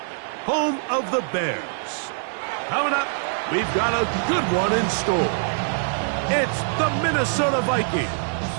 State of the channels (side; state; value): left; silent; 63 dB below the other